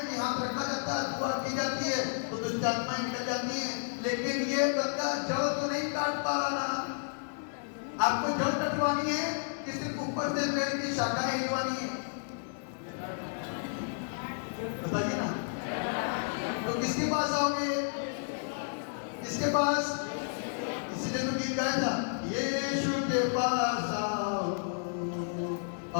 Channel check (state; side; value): silent; right; digital silence